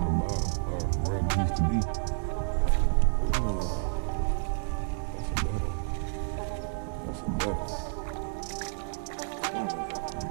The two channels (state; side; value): silent; left; digital silence